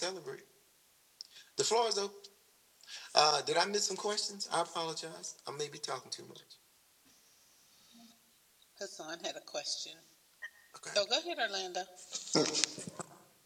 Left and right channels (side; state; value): both; identical; correlation 1.00